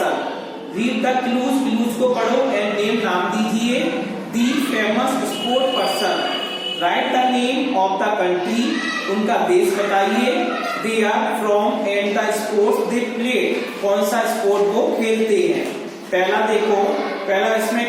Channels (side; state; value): both; identical; correlation 1.00